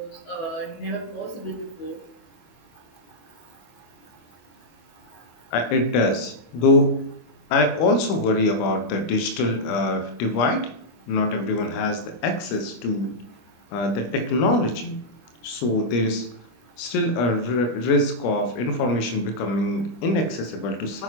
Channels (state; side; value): late; right; 25 ms